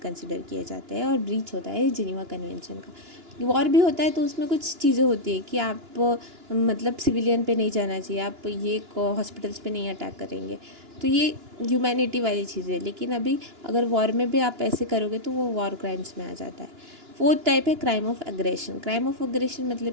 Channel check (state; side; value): late; left; 2.9 ms